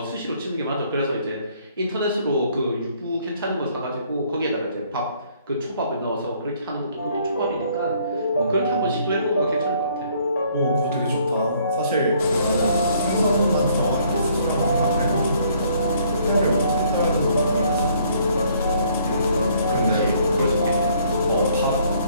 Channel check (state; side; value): inverted; both; correlation -0.63